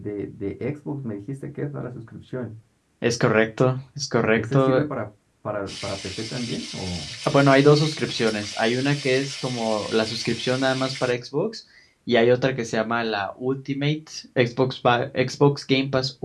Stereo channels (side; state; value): both; identical; correlation 1.00